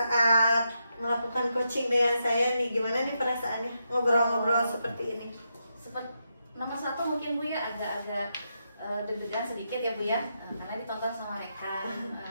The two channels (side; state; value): both; inverted; correlation -0.83